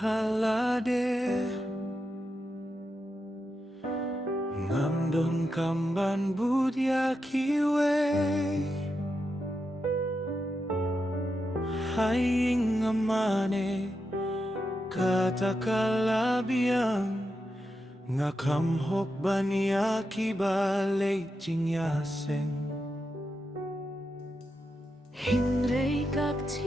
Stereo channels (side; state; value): both; normal; correlation 0.86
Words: Ngamdon kamban budya kiwe Haying amane katakalabiang Ngakamhok baniya kibalay jingyaseng Hinrei kak